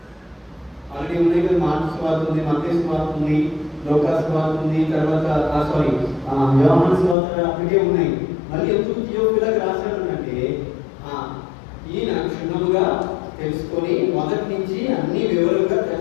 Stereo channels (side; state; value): right; drops out; at 7.2 s